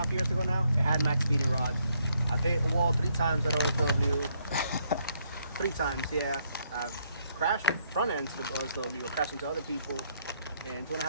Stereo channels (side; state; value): both; inverted; correlation -0.72